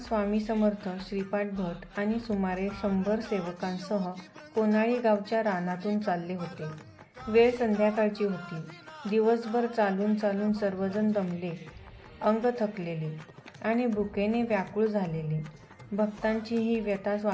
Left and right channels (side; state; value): both; identical; correlation 1.00